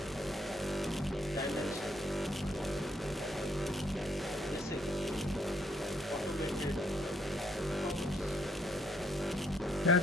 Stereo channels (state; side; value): normal; both; correlation 0.71